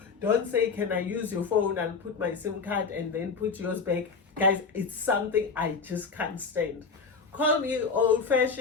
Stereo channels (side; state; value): right; quieter; 5.0 dB